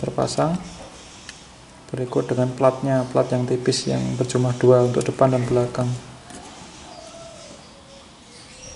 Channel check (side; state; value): both; identical; correlation 1.00